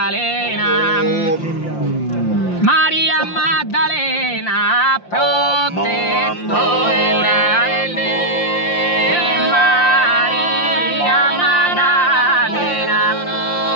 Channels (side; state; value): right; late; 5.7 ms